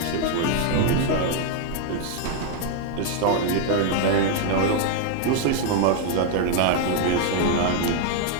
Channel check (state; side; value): different; both; correlation 0.00